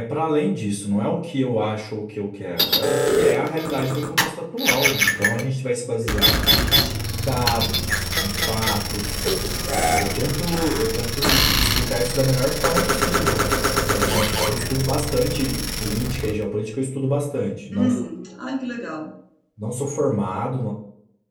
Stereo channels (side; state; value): both; identical; correlation 1.00